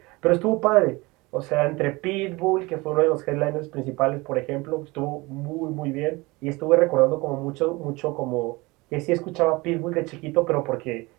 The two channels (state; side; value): quieter; left; 23.3 dB